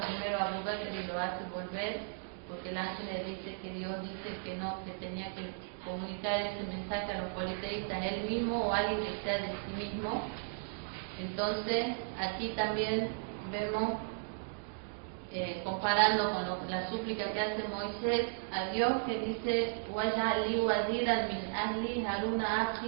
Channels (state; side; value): silent; left; digital silence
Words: primero a Abu Bakr y lo hace volver? porque el ángel le dice que Dios dice que no, que tenía que comunicar ese mensaje a los politeístas él mismo o alguien que sea de sí mismo. Entonces aquí también vemos, comparando con la súplica que hace Moisés a Dios, que dice "Waj'alni waziran min ahli Haruna